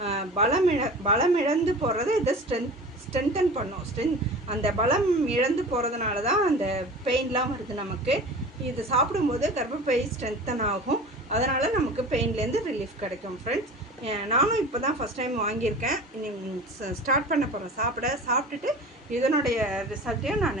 பலம் இழந்து போகிறத இதை ஸ்ட்ரென்தன் பண்ணும். அந்த பலம் இழந்து போகிறதுனால தான் அந்த பெயின்லாம் வருது நமக்கு. இது சாப்பிடும்போது கர்ப்பப்பை ஸ்ட்ரென்தன் ஆகும், அதனால் நமக்கு பெயின்லேருந்து ரிலீஃப் கிடைக்கும் ஃப்ரெண்ட்ஸ். நானும் இப்போ தான் ஃபஸ்ட் டைம் வாங்கியிருக்கேன். ஸ்டார்ட் பண்ண போகிறேன் சாப்பிட்டுட்டு இதனுடைய ரிசல்ட்டையும்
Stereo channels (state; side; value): normal; both; correlation 0.37